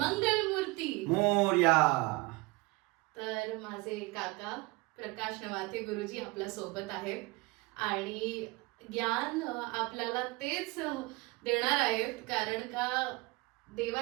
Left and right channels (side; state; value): left; quieter; 24.3 dB